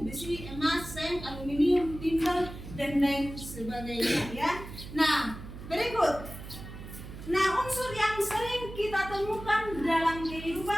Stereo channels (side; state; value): right; noise; hum, 12 dB below the sound